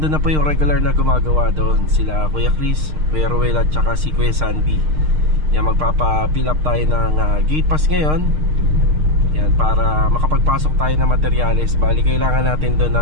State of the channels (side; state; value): left; late; 6.5 ms